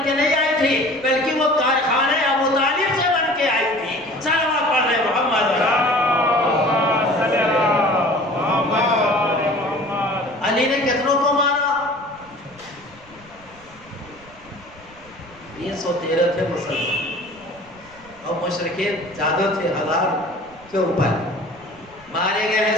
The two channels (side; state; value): right; noise; rumble, 25 dB below the sound